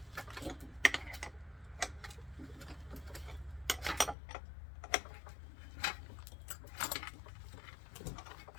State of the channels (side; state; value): right; drops out; at 4.2 s